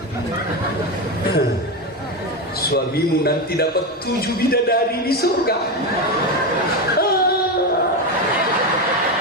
suamimu nanti dapat 7 bidadari di surga.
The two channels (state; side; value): normal; both; correlation 0.14